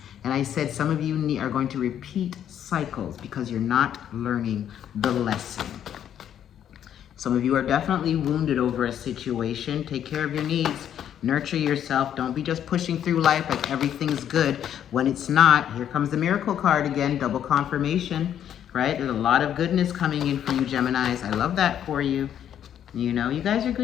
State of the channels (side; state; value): right; quieter; 9.9 dB